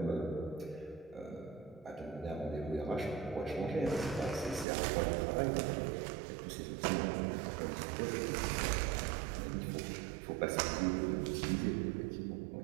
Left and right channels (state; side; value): drops out; left; at 4.7 s